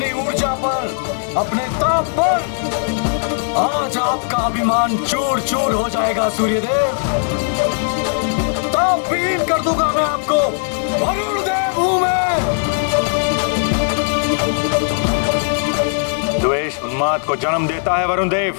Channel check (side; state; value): right; silent; digital silence